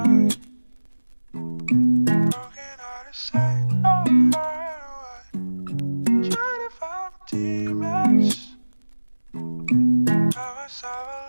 Broken hearted, say I'm right away. Trying to find my teammates. Now it's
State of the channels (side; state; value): both; inverted; correlation -1.00